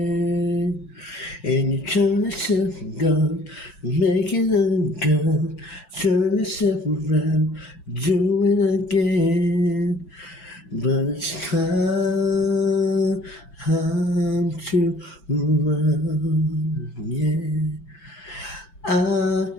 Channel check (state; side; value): late; right; 5.9 ms